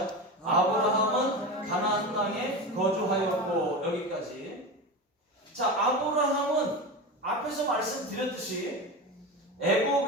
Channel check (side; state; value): both; normal; correlation 0.24